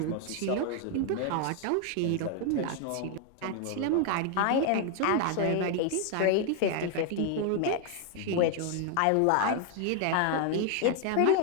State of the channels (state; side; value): different; both; correlation 0.00